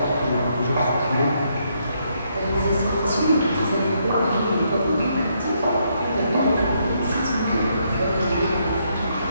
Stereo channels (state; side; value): inverted; both; correlation -0.75